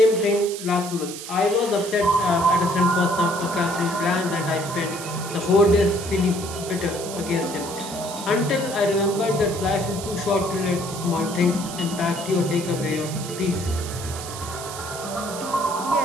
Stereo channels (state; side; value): noise; right; hiss, 10 dB below the sound